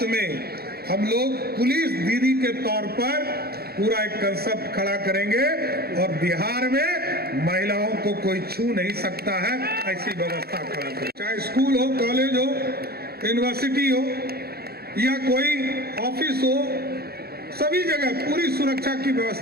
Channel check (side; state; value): left; late; 0.46 ms